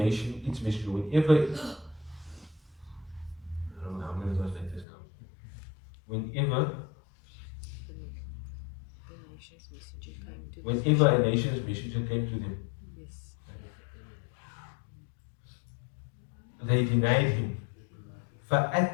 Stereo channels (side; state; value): right; drops out; at 4.9 s